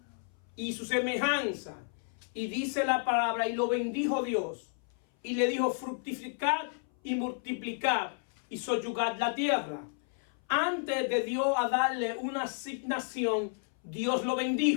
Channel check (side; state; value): right; silent; 57 dB below the other